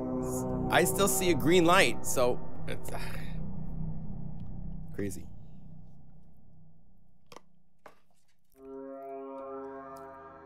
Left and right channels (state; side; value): identical; both; correlation 1.00